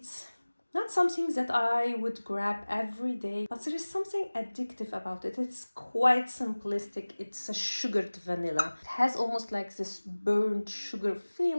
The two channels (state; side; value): inverted; both; correlation -1.00